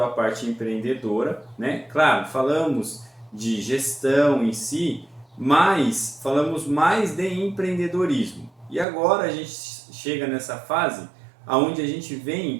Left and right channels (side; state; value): left; drops out; at 8.8 s